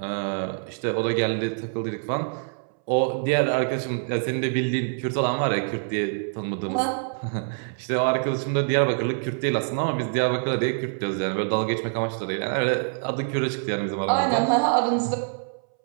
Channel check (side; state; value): left; silent; 61 dB below the other